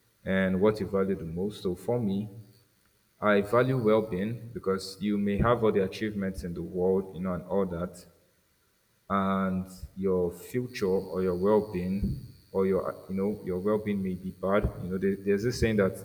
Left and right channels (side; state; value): both; identical; correlation 1.00